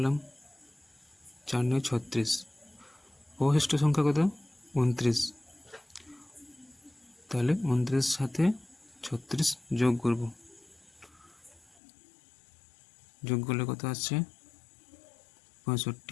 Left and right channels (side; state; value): right; drops out; at 11.8 s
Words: 4 9 36। অবশিষ্ট সংখ্যা কত? 29। তাহলে 29 সাথে 36 যোগ করব। যোগ করলে কত আসছে?